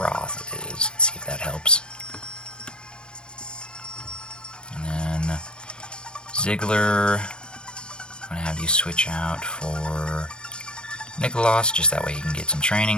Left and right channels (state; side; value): late; right; 0.050 ms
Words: is. Let's see if that helps. And then Ziggler, I'm going to have you switch out for Nicholas, just that way you can get some